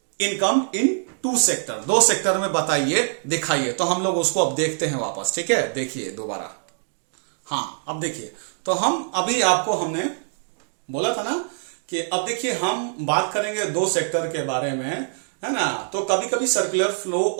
income in 2 sector, 2 sector में बताइए, दिखाइए। तो हम लोग उसको अब देखते हैं वापस। ठीक है, देखिए दोबारा। हाँ, अब देखिए, तो हम अभी आपको हमने बोला था ना कि अब देखिए हम बात करेंगे 2 सेक्टर के बारे में, है ना। तो कभी कभी circular flow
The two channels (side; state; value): left; silent; digital silence